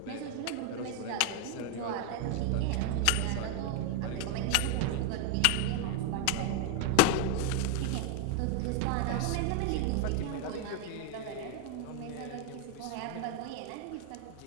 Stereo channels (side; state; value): both; different; correlation 0.00